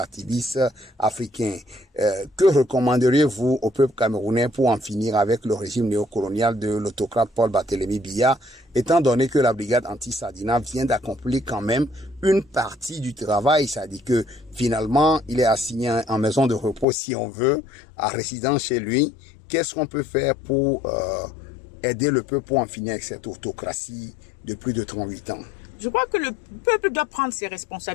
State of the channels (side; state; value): right; drops out; at 16.9 s